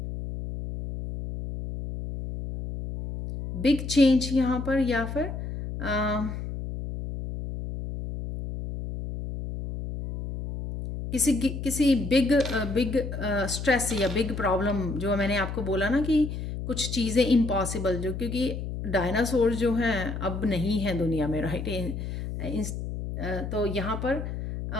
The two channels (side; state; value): left; noise; hum, 6 dB below the sound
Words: बिग चेंज यहाँ पर, या फिर किसी बिग स्ट्रेस या बिग प्रॉब्लम, जो मैंने आपको बोला ना कि कुछ चीज़ें इम्पॉसिबल, जो क्योंकि डायनासोर जो हैं अब नहीं हैं दुनिया में, राइट। तो यहाँ पर